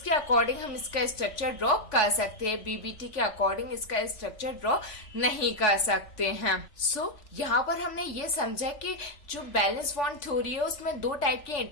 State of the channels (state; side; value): late; right; 3.4 ms